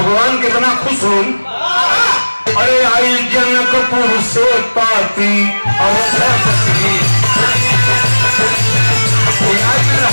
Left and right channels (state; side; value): inverted; both; correlation -1.00